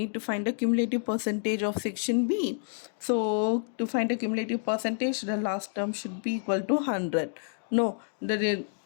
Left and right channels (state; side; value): silent; right; digital silence